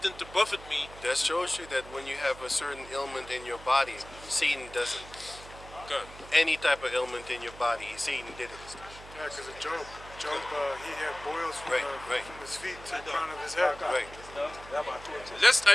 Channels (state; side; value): noise; right; hum, 17 dB below the sound